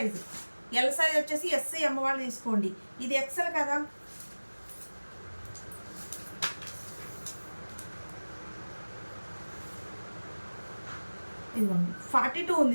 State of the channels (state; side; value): inverted; both; correlation -1.00